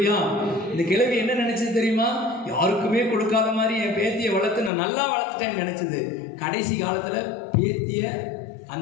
இந்த கிழவி என்ன நினைச்சது தெரியுமா, யாருக்குமே கொடுக்காத மாதிரி என் பேத்தியை வளர்த்து நான் நல்லா வளர்த்துட்டேன்னு நினைச்சது. கடைசி காலத்துல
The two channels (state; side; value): drops out; right; at 4.7 s